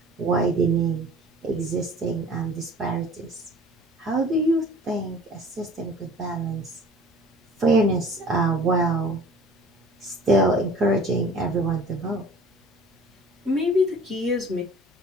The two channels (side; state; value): both; normal; correlation 0.46